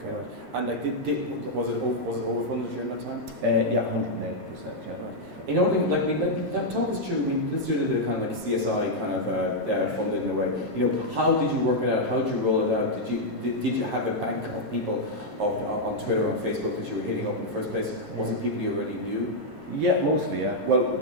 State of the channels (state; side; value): normal; both; correlation -0.03